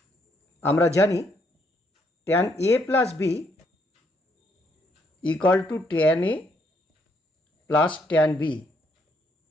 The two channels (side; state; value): both; normal; correlation 0.72